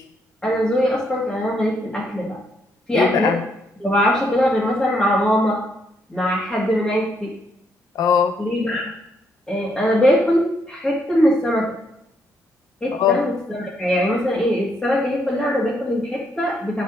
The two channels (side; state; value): both; normal; correlation 0.74